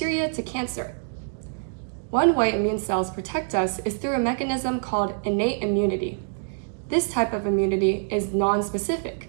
to cancer. One way immune cells protect us is through a mechanism called innate immunity. This type of immunity is non-specific,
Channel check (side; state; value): left; silent; digital silence